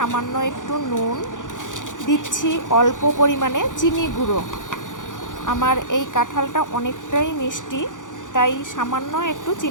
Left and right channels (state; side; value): late; right; 0.87 ms